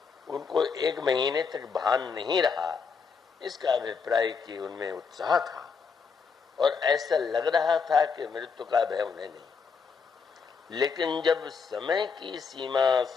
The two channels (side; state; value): right; quieter; 5.6 dB